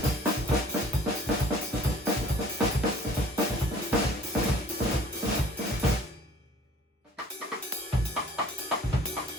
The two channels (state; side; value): normal; both; correlation 0.52